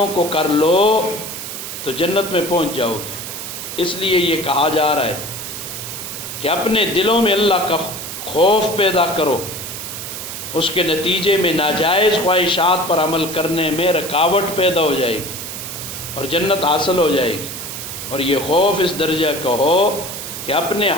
کو کر لو تو جنت میں پہنچ جاؤ گے. اس لیے یہ کہا جا رہا ہے کہ اپنے دلوں میں اللہ کا خوف پیدا کرو، اس کے نتیجے میں ناجائز خواہشات پر عمل کرنے میں رکاوٹ پیدا ہو جائے گی اور جنت حاصل ہو جائے گی. اور یہ خوف اس درجہ کا ہو کہ اپنے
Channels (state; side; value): noise; right; hiss, 8 dB below the sound